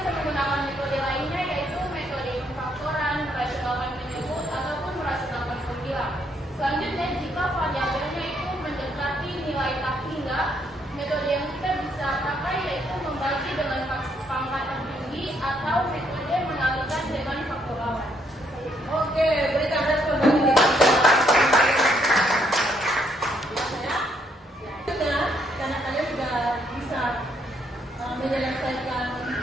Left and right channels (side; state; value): both; normal; correlation 0.72